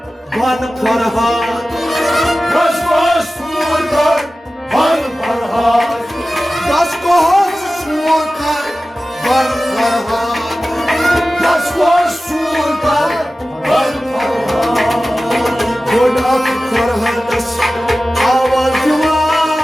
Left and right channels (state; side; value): normal; both; correlation 0.95